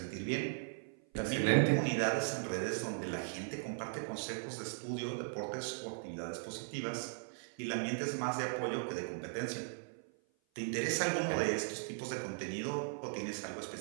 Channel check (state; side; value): silent; left; 52 dB below the other